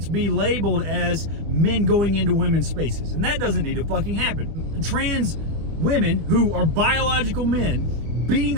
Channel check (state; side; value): late; left; 25 ms